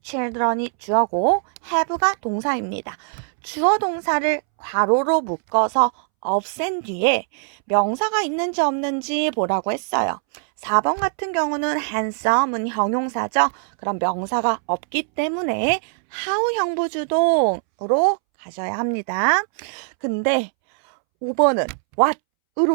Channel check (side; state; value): left; silent; 65 dB below the other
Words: children이 주어고 have가 동사입니다. 주어 동사를 괄호로 묶어서 없앤 뒤에 명사가 있는지 없는지 보라고 했어요. 4번 같은 경우는 handsome은 형용사죠. 그럼 명사가 없기 때문에 how 형부주동으로 가져야 합니다. 근데 5번은